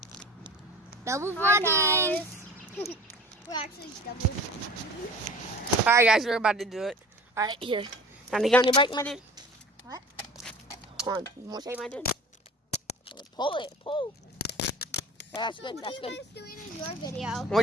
Double vlogging. We're actually double. Alright, guys, we're about to do it. Alright, here. Donnie, get on your bike, my dude. What? Hold on. You want to say, my dude? Pull it. Pull. Yeah, that's good. What That's are you good. guys doing in your video? We're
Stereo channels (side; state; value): both; normal; correlation 0.41